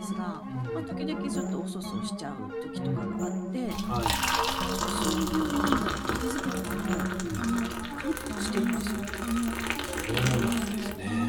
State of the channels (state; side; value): identical; both; correlation 1.00